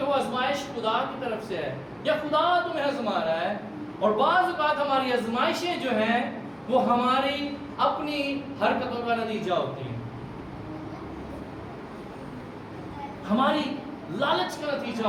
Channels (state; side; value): identical; both; correlation 1.00